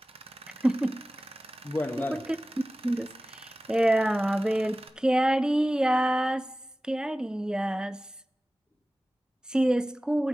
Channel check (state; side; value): normal; both; correlation 0.97